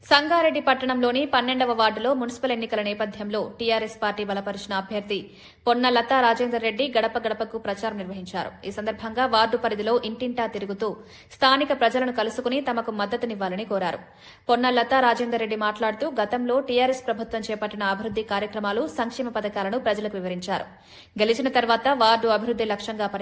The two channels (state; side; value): identical; both; correlation 1.00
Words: సంగారెడ్డి పట్టణంలోని 12వ వార్డులో మున్సిపల్ ఎన్నికల నేపథ్యంలో టీఆర్ఎస్ పార్టీ బలపరిచిన అభ్యర్థి పొన్న లతా రాజేందర్ రెడ్డి గడప గడపకు ప్రచారం నిర్వహించారు. ఈ సందర్భంగా వార్డు పరిధిలో ఇంటింటా తిరుగుతూ స్థానిక ప్రజలను కలుసుకుని తమకు మద్దతునివ్వాలని కోరారు. పొన్న లతా రాజేందర్ రెడ్డి మాట్లాడుతూ గతంలో టీఆర్ఎస్ ప్రభుత్వం చేపట్టిన అభివృద్ది కార్యక్రమాలు, సంక్షేమ పథకాలను ప్రజలకు వివరించారు. గెలిచిన తర్వాత వార్డు అభివృద్ది లక్ష్యంగా